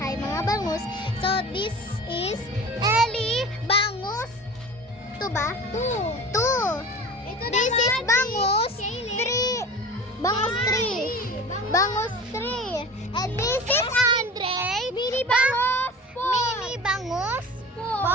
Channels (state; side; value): normal; both; correlation 0.37